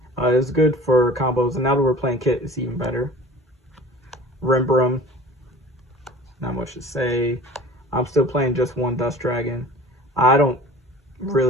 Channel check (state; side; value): normal; both; correlation 0.43